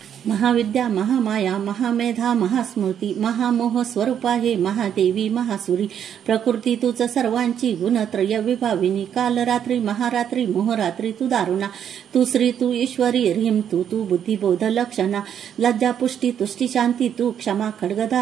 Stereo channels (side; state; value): left; quieter; 9.0 dB